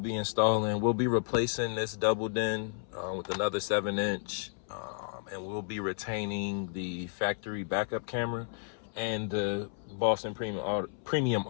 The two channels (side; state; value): right; silent; 56 dB below the other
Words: installing, we'll be replacing this double din with another 7-inch, and we'll be retaining the factory backup camera and the Boston premium